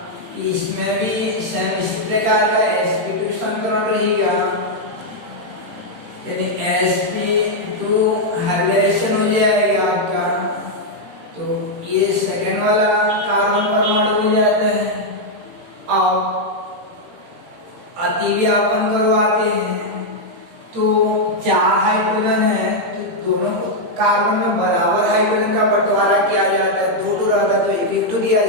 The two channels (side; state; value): left; late; 18 ms